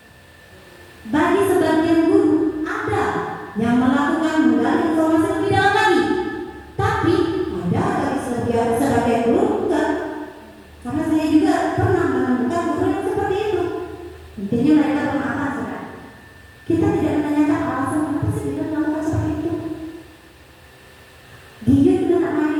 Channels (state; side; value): identical; both; correlation 1.00